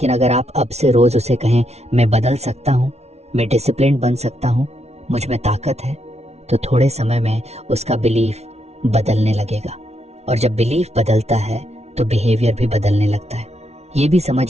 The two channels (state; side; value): late; left; 0.31 ms